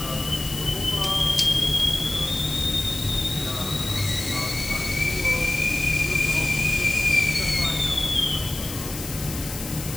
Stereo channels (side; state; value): left; noise; hiss, 10 dB below the sound